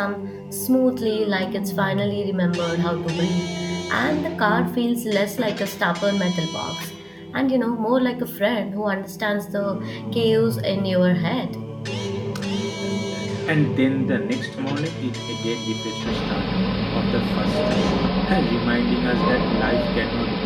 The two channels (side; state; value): both; identical; correlation 1.00